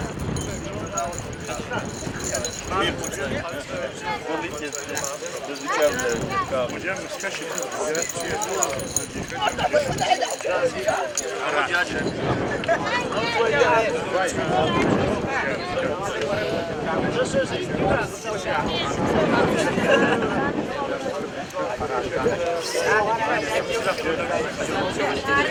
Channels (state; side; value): identical; both; correlation 1.00